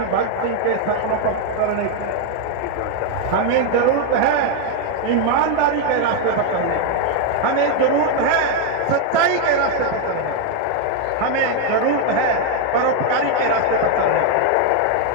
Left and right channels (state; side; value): different; both; correlation 0.01